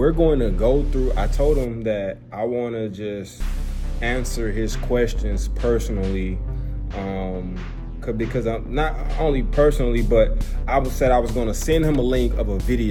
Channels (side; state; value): both; identical; correlation 1.00